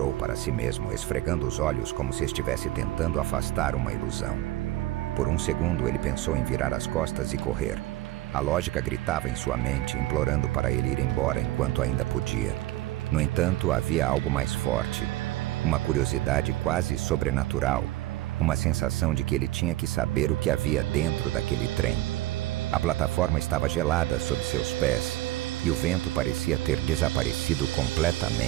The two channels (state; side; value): quieter; left; 16.1 dB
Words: para si mesmo, esfregando os olhos como se estivesse tentando afastar uma ilusão. Por um segundo ele pensou em virar as costas e correr. A lógica gritava em sua mente, implorando para ele ir embora enquanto ainda podia. No entanto, havia algo mais forte. Uma curiosidade quase sobrenatural. Uma sensação de que ele tinha que saber o que havia dentro daquele trem. A plataforma estava gelada sob seus pés, e o vento parecia ter desaparecido